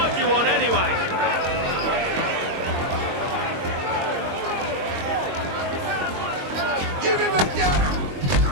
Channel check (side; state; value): left; late; 22 ms